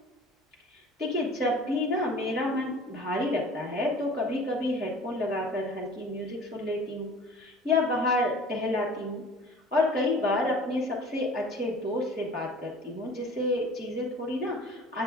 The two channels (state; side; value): normal; both; correlation 0.45